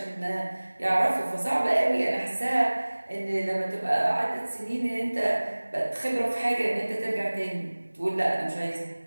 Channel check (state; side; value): inverted; both; correlation -1.00